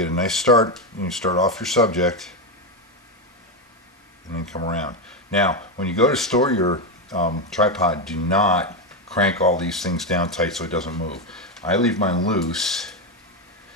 a nice start. You start off your subject and then come around. Now, when you go to store your tripod, do not crank all these things down tight so it doesn't move. I leave mine loose,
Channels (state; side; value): normal; both; correlation 0.09